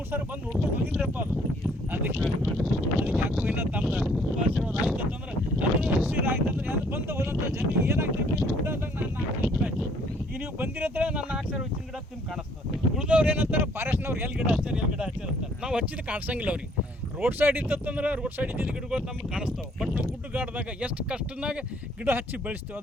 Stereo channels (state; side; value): normal; both; correlation 0.62